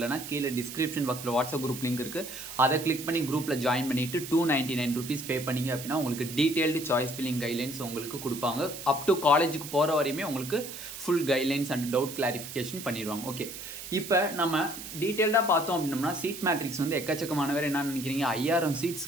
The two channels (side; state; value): right; noise; hiss, 10 dB below the sound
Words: கீழே டிஸ்கிரிப்ஷன் பாக்ஸில் வாட்ஸ்அப் குரூப் லிங்க் இருக்குது. அதை கிளிக் பண்ணி குரூப்பில் ஜாயின் பண்ணிவிட்டு 299 rupees பே பண்ணிங்க அப்படின்னா உங்களுக்கு டீட்டெயில்டு சாய்ஸ் ஃபில்லிங் கைட்லைன்ஸ் உங்களுக்கு கொடுப்பாங்க. அப் டு காலேஜுக்கு போகிற வரையுமே உங்களுக்கு full guidelines and doubt clarification பண்ணிடுவாங்க. ஓகே, இப்போ நம்ம டீட்டெயில்டாக பார்த்தோம் அப்படின்னம்னா சீட் மேட்ரிக்ஸ் வந்து எக்கச்சக்கமானவர் என்ன நினைக்கிறீங்க, 5000